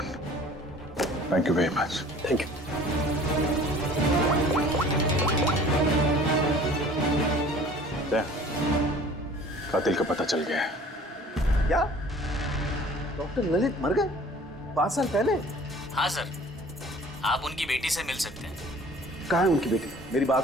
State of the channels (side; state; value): both; normal; correlation 0.49